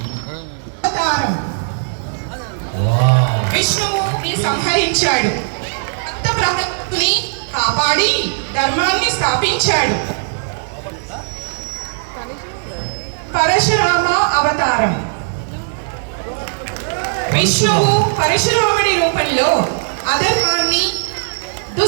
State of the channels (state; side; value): silent; left; digital silence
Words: విష్ణువుని సంహరించాడు, భక్తప్రహ్లాదుని కాపాడి ధర్మాన్ని స్థాపించాడు. పరశురామ అవతారం. విష్ణువు పరశురాముడి రూపంలో అధర్మాన్ని,